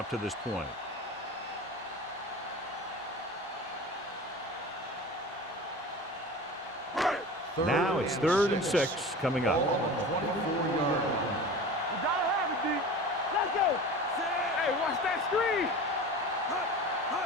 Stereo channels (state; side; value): normal; both; correlation 0.35